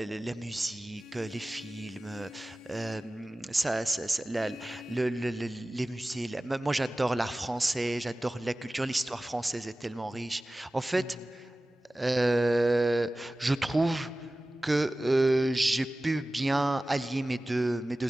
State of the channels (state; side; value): normal; both; correlation 0.97